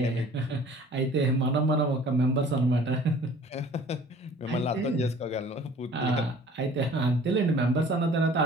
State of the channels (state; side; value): normal; both; correlation 0.49